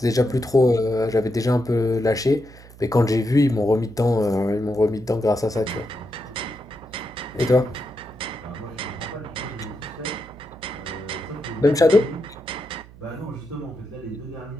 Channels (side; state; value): right; noise; hum, 20 dB below the sound